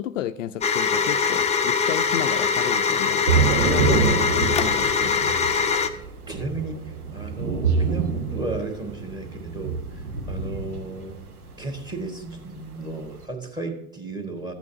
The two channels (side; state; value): both; normal; correlation -0.05